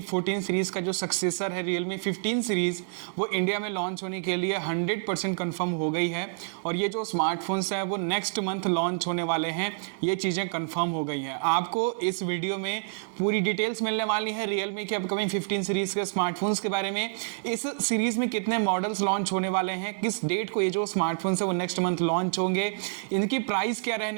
14 सीरीज का जो सक्सेसर है Realme 15 सीरीज वो इंडिया में लॉन्च होने के लिए 100% कंफर्म हो गई है और ये जो स्मार्टफोन्स हैं वो नेक्स्ट मंथ लॉन्च होने वाले हैं। ये चीज़ें कंफर्म हो गई हैं। आपको इस वीडियो में पूरी डिटेल्स मिलने वाली है Realme के अपकमिंग 15 सीरीज के स्मार्टफोन्स के बारे में। इस सीरीज में कितने मॉडल्स लॉन्च होने वाले हैं, किस डेट को ये जो स्मार्टफोन्स है वो नेक्स्ट मंथ लॉन्च होंगे, इनकी प्राइस क्या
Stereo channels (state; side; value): silent; left; 59 dB below the other